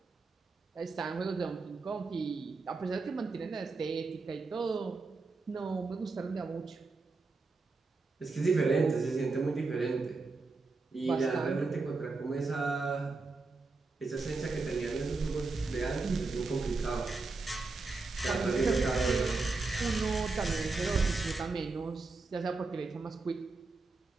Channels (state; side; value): quieter; left; 3.9 dB